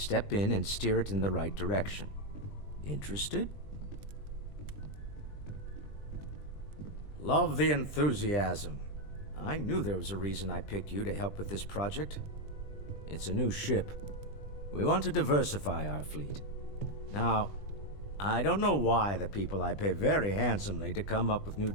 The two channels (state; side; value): late; right; 20 ms